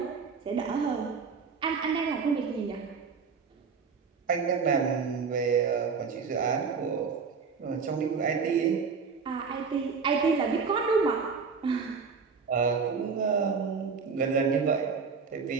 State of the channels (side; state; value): left; quieter; 5.5 dB